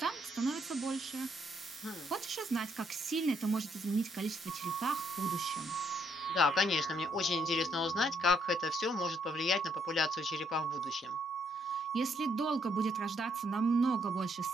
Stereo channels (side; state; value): both; normal; correlation 0.72